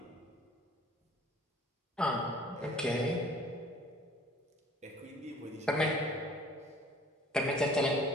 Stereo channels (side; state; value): both; normal; correlation 0.51